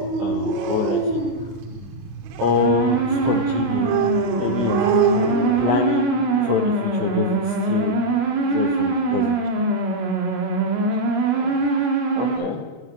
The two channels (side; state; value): left; late; 25 ms